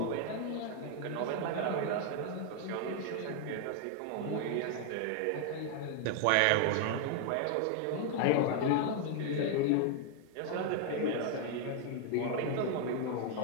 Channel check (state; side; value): different; both; correlation 0.00